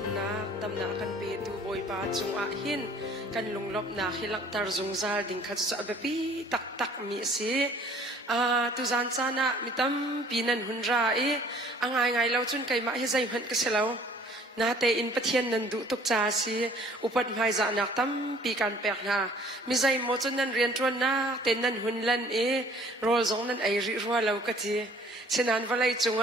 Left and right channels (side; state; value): both; normal; correlation 0.55